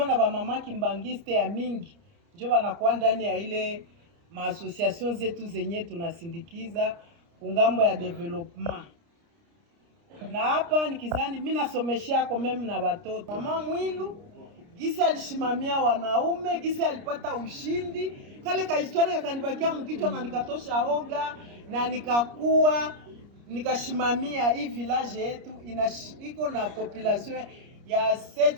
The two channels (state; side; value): late; left; 29 ms